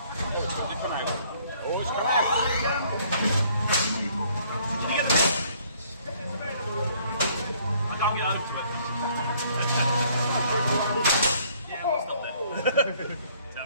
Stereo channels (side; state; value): both; inverted; correlation -0.61